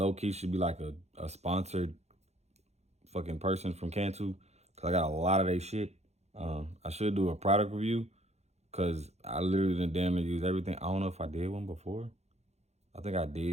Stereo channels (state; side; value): late; left; 0.31 ms